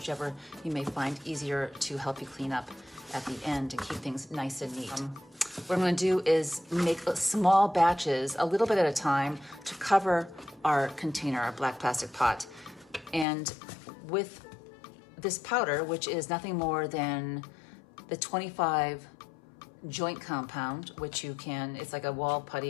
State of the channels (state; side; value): drops out; right; at 13.2 s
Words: you may find easier to help you clean up at the end and keep things nice and neat. What I'm gonna do is make small batches, a little bit at a time, to cover our container, our black plastic pot. And with this powder, which is nothing more than the 25 joint compound, which you can, it's like a wall